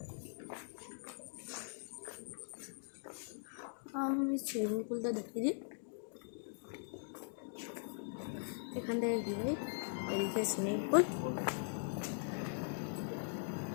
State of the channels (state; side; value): silent; right; digital silence